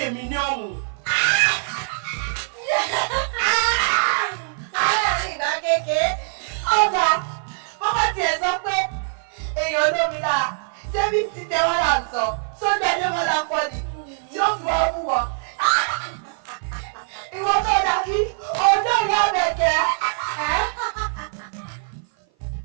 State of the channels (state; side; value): silent; left; 55 dB below the other